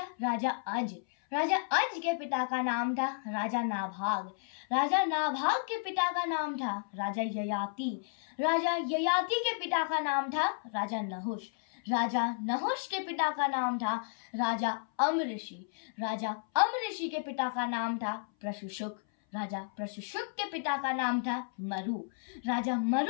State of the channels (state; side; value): silent; right; 56 dB below the other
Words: राजा अज। राजा अज के पिता का नाम था राजा नाभाग। राजा नाभाग के पिता का नाम था राजा ययाति। राजा ययाति के पिता का नाम था राजा नहुष। राजा नहुष के पिता का नाम था राजा अमऋषि। राजा अमऋषि के पिता का नाम था प्रशुशुक। राजा प्रशुशुक के पिता का नाम था मरु। राजा